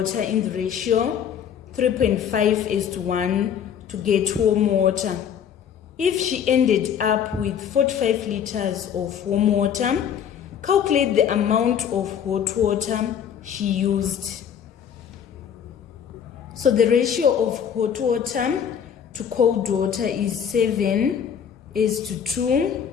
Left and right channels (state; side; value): quieter; right; 8.3 dB